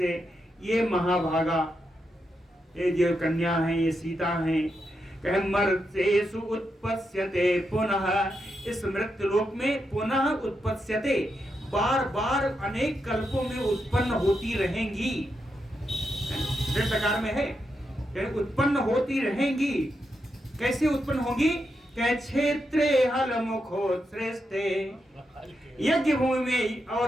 ये महाभागा, ये जो कन्या है, ये सीता है, कहे मर्त्येषु उत्पत्स्यते पुनः, इस मृत्यु लोक में पुनः उत्पत्स्यते, बार बार अनेक कल्पों में उत्पन्न होती रहेंगी। प्रकार में है, कहे उत्पन्न होती रहेंगी। कैसे उत्पन्न होंगी? कहे क्षेत्रे हल मुखो श्रेष्ठे, यज्ञ भूमि में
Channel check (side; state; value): both; normal; correlation 0.85